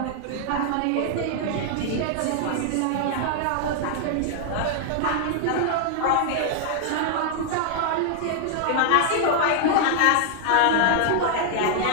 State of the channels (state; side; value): different; both; correlation 0.00